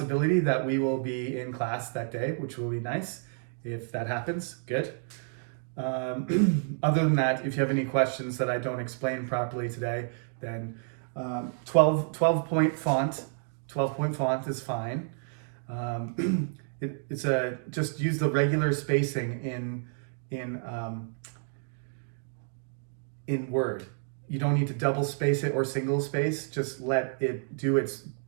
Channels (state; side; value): silent; left; 58 dB below the other